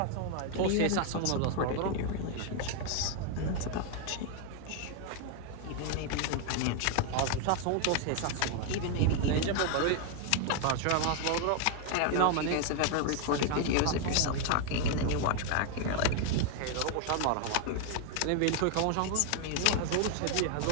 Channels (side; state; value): both; different; correlation 0.00